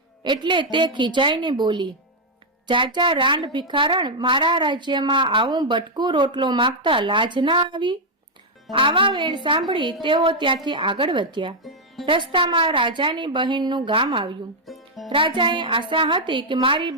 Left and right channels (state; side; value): normal; both; correlation -0.02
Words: એટલે તે ખીજાઈને બોલી, જાજા રાંડ ભિખારણ, મારા રાજ્યમાં આવું બટકું રોટલો માંગતા લાજ ના આવી? આવા વેણ સાંભળી તેઓ ત્યાંથી આગળ વધ્યા. રસ્તામાં રાજાની બહેનનું ગામ આવ્યું. રાજાએ આશા હતી કે મારી